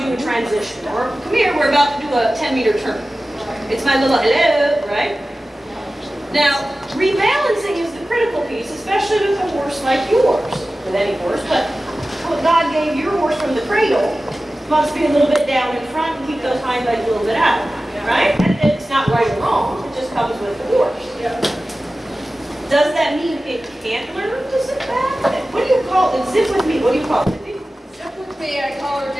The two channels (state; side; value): normal; both; correlation 0.96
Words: a transition. Or come here, we're about to do a 10-meter turn. It's my little hello, right? Now, rebalancing is the critical piece, especially with a horse like yours, with any horse, but what God gave your horse from the cradle must be a little bit down in front and keep those hind legs a little bit out, right? And it's not right or wrong, it just comes with the horse. Does that mean it can't learn to sit back? What do you call it? Zip with me, what do you call it? Zip with me, I call her